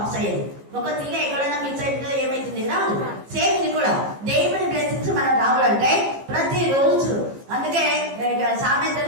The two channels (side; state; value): left; late; 15 ms